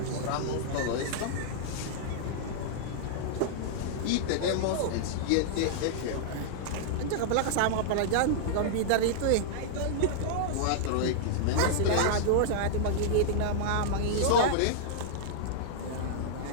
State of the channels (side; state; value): both; different; correlation -0.01